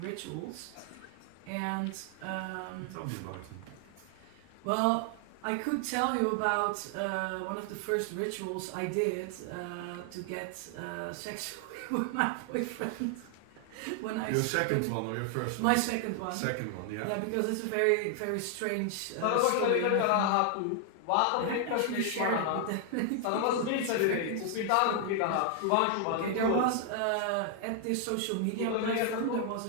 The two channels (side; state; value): both; different; correlation 0.00